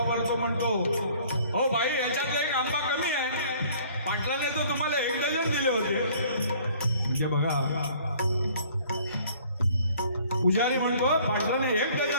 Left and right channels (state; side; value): inverted; both; correlation -0.55